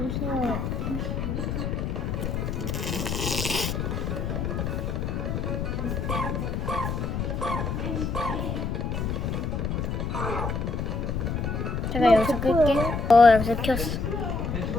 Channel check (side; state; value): left; noise; rumble, 1 dB below the sound